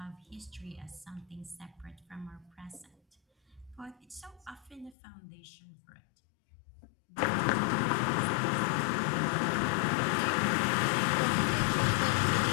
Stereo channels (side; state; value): right; drops out; at 5.0 s